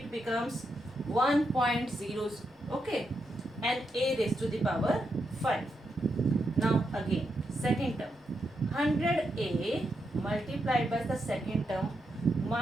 becomes 1.0, okay, and a raised to the power 5. Now again, second term, 100a multiplied by the second term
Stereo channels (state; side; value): normal; both; correlation 0.83